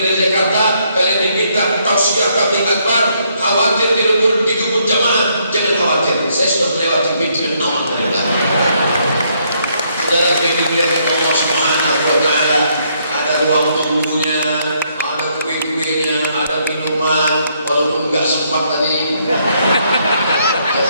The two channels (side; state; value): both; inverted; correlation -0.72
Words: dari Jakarta, kalian diminta tausiah tabligh akbar. Khawatir digebut jamaah, jangan khawatir. Saya sudah melewati pintu yang aman dari belakang. Saudara yang dimuliakan Allah Subhanahu Wa Taala, ada ruang tunggunya, ada kue-kuenya, ada minuman, walaupun nggak sempat tadi.